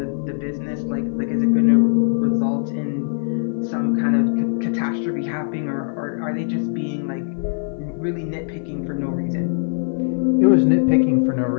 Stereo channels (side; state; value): right; silent; 59 dB below the other